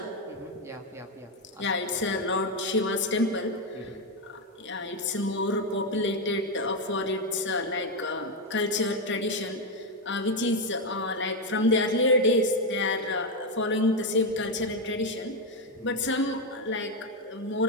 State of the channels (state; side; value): normal; both; correlation 0.06